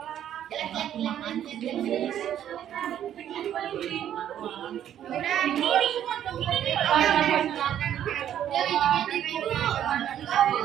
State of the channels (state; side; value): quieter; left; 10.6 dB